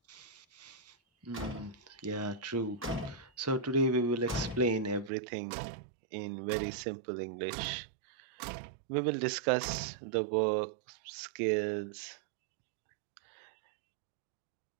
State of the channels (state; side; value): drops out; left; at 5.1 s